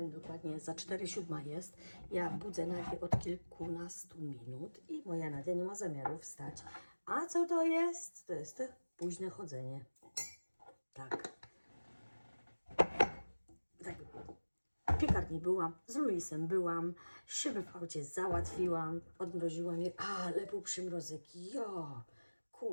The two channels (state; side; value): inverted; both; correlation -1.00